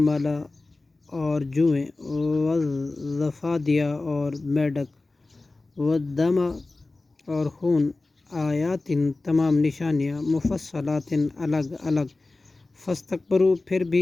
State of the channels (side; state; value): right; quieter; 3.2 dB